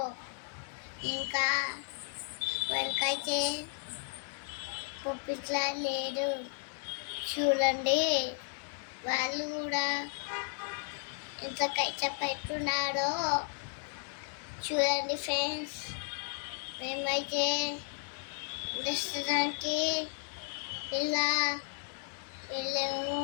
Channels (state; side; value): silent; right; 55 dB below the other